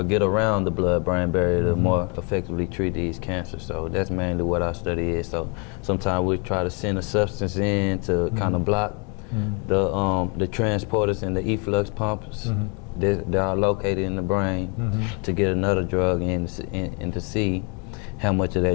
get around the blood-brain barrier to more effectively treat these cancers. So that's mainly what our study is. So sometimes we try to send a substance in to kind of block the transporters and the efflux pumps that are located in the brain to get another drug in and to see how much of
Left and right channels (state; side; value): quieter; right; 35.5 dB